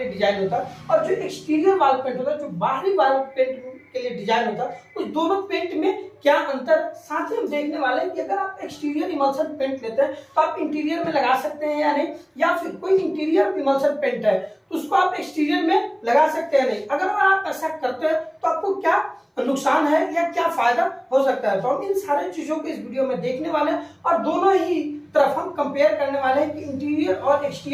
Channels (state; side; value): identical; both; correlation 1.00